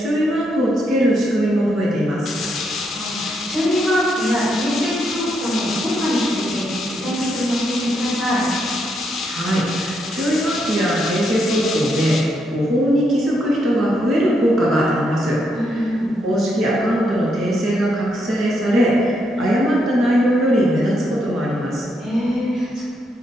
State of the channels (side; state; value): both; normal; correlation 0.78